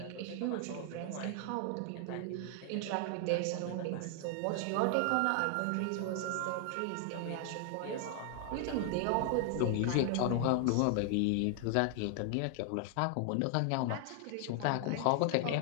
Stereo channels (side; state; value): both; different; correlation 0.00